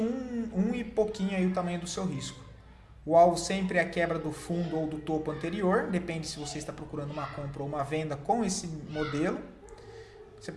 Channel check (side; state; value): both; identical; correlation 1.00